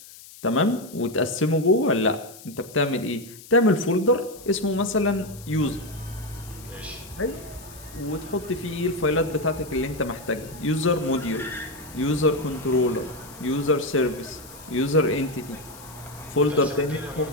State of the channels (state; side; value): noise; left; hiss, 19 dB below the sound